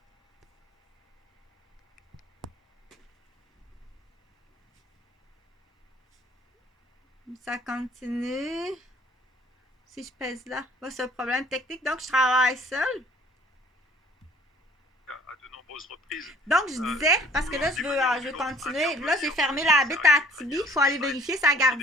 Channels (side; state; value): both; normal; correlation 0.55